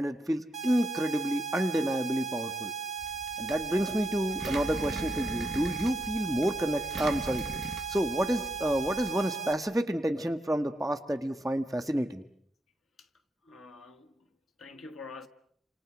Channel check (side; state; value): both; normal; correlation 0.81